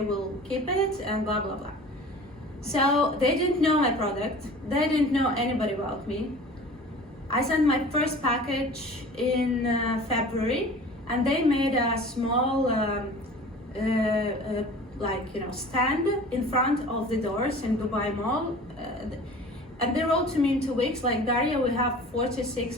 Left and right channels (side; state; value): both; normal; correlation 0.42